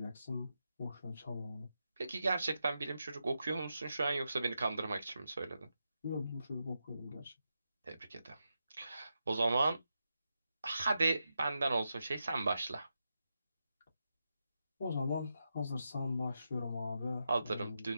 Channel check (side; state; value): both; inverted; correlation -0.87